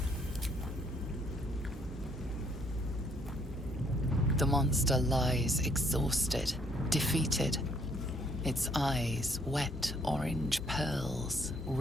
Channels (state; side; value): normal; both; correlation 0.67